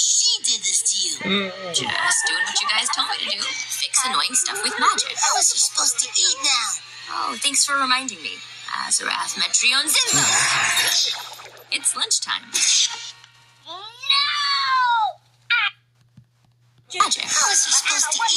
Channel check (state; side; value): identical; both; correlation 1.00